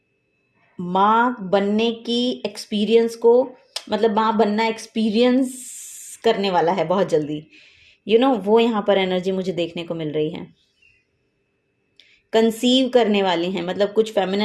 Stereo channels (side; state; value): both; identical; correlation 1.00